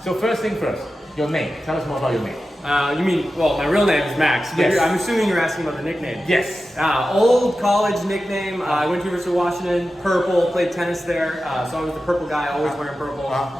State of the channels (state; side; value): normal; both; correlation 0.93